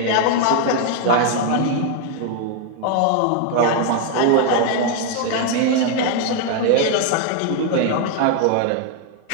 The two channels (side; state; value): both; different; correlation 0.00